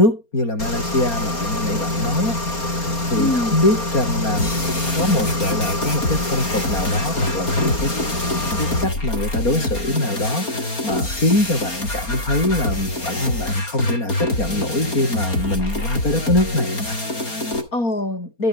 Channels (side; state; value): right; late; 4.3 ms